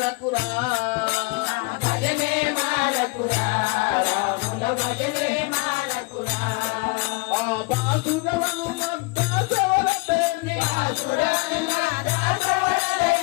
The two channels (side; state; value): right; quieter; 26.9 dB